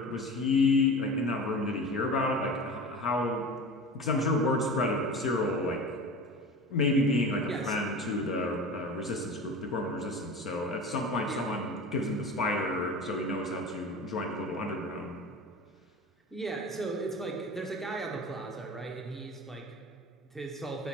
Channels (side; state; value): both; normal; correlation 0.34